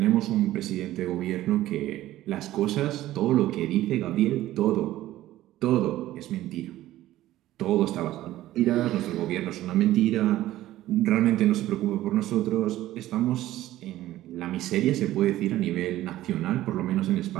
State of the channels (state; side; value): quieter; left; 14.8 dB